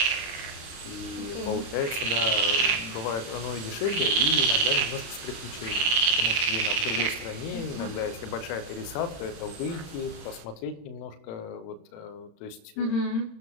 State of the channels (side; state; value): right; late; 35 ms